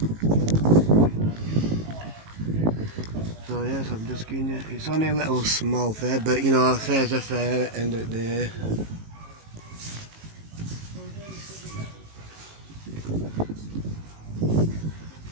So yes, I'm just giving you. It's only a little small fair, but you know, a fair's a fair at the end of the day.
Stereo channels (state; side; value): late; left; 18 ms